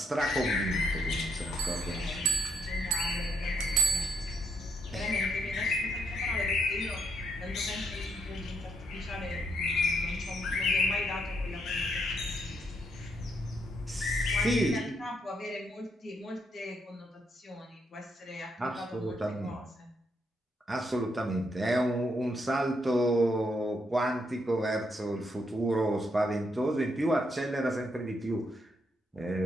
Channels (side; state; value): both; normal; correlation 0.75